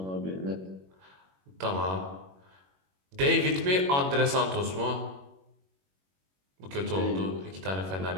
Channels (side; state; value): left; late; 21 ms